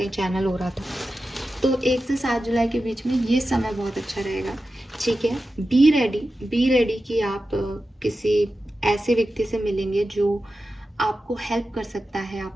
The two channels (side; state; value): both; normal; correlation 0.92